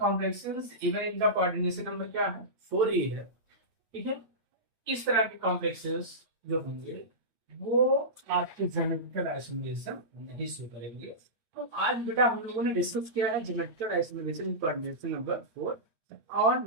इवन इनका कोऑर्डिनेशन नंबर क्या है, 4 ही है, ठीक है। इस तरह के कॉम्प्लेक्सेस जो होंगे वो आपके ज्योमेट्रिकल आइसोमेरिज्म नहीं शो करेंगे। तो आज बेटा हम लोगों ने डिस्कस किया है ज्योमेट्रिकल आइसोमेरिज्म कोऑर्डिनेशन नंबर 4, और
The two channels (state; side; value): late; left; 8.9 ms